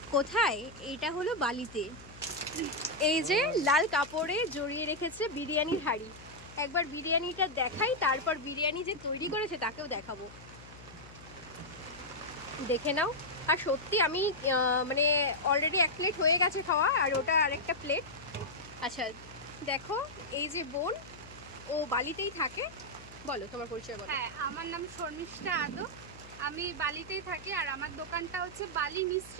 কোথায়? এইটা হলো বালিতে। এই যে লাল কাপড়ে জড়িয়ে রেখেছে বিরিয়ানির হাঁড়ি। একবার বিরিয়ানিটা দেখাই, তারপর বিরিয়ানি যে তৈরি করেছে তাকেও দেখাবো, দেখে নাও। আর সত্যি আমি মানে অলরেডি 1 প্লেট হয়ে গেছে খাওয়া, আর ওটা আরেকটা প্লেট। আচ্ছা দেখো, এই যে বোন, ও বালিতেই থাকে। বলো তোমার পরিচয় বলো। হ্যাঁ, আমার নাম শর্মিষ্ঠা আদো, আমি বালিতেই থাকি। আর আমার দোকানটা হচ্ছে বালি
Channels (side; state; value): left; noise; hum, 19 dB below the sound